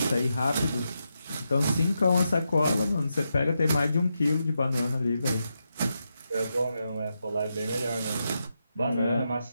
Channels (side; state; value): both; inverted; correlation -0.86